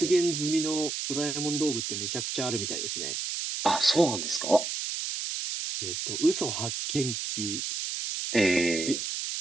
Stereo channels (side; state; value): right; noise; hiss, 3 dB below the sound